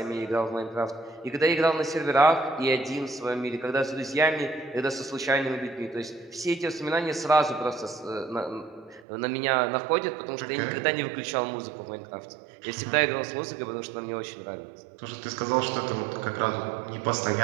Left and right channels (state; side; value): drops out; left; at 9.1 s